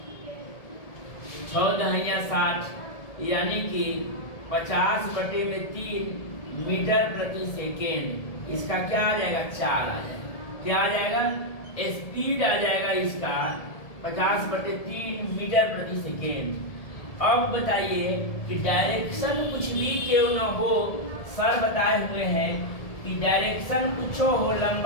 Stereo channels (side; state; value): right; late; 1.7 ms